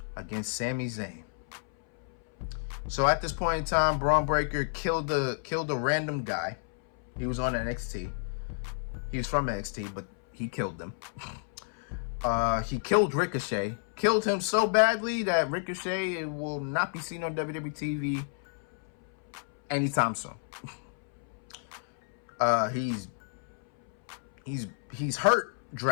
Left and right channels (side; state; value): right; silent; 57 dB below the other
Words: against Sami Zayn. So at this point in time, Braun Breaker killed a random guy. He was on NXT. He was from NXT, but he killed them. He killed Ricochet. Killed him so badly that Ricochet will not be seen on WWE TV anytime soon. He's hurt